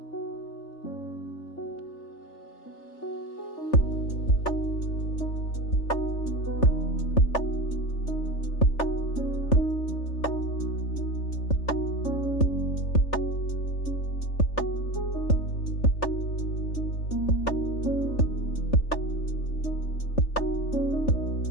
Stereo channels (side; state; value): right; late; 3.4 ms